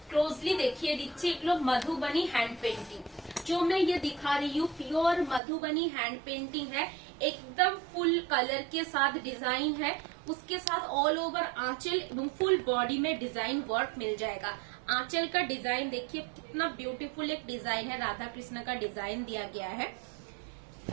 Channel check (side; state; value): left; drops out; at 5.4 s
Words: क्लोजली देखिए दीजिए, एगलो मधुबनी हैंड पेंटिंग जो मैं ये दिखा रही हूँ, प्योर मधुबनी हैंड पेंटिंग है, एकदम फुल कलर के साथ डिजाइन है, उसके साथ ऑल ओवर आंचल एवं फुल बॉडी में डिजाइन वर्क मिल जाएगा। आंचल का डिजाइन देखिए कितना ब्यूटीफुल एक डिजाइन है, राधा कृष्ण का डिजाइन दिया गया है।